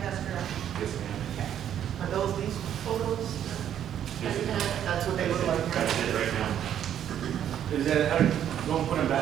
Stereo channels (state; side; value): quieter; left; 10.0 dB